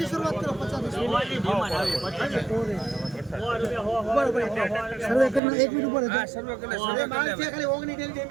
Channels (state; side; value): drops out; left; at 5.4 s